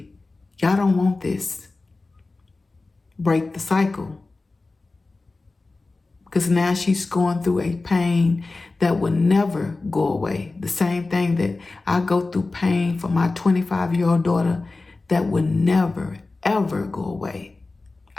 Y'all don't want this. Break the cycle. Because now she's going through a pain that will never go away. The same thing that I go through pain for my 25-year-old daughter that will never, ever go away.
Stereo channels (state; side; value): quieter; right; 3.4 dB